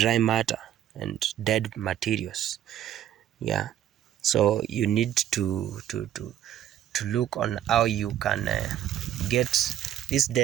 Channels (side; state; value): left; quieter; 11.3 dB